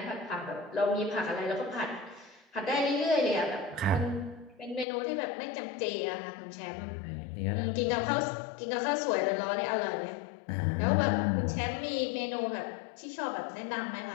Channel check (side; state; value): right; drops out; at 4.9 s